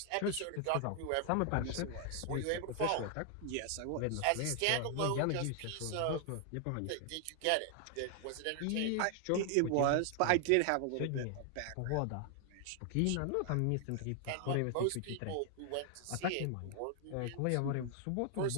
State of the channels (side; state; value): both; different; correlation 0.00